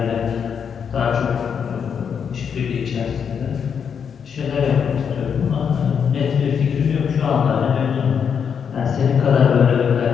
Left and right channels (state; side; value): quieter; right; 7.1 dB